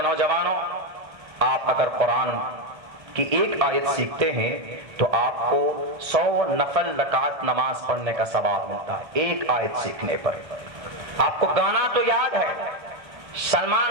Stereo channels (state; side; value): late; left; 1.6 ms